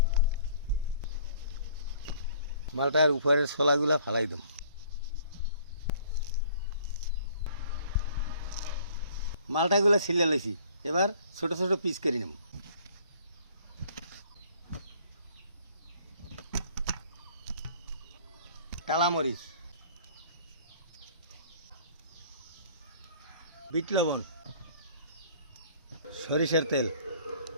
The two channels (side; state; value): both; inverted; correlation -0.55